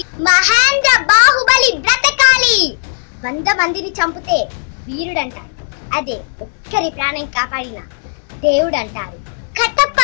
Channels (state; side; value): silent; right; digital silence